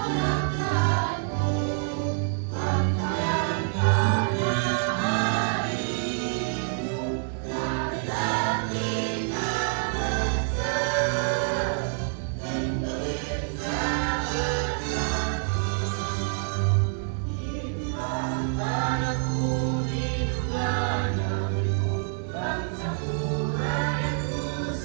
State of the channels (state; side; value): silent; left; 58 dB below the other